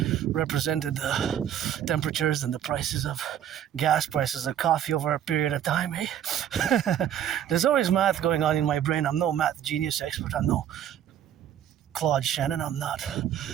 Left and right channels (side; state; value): left; quieter; 10.2 dB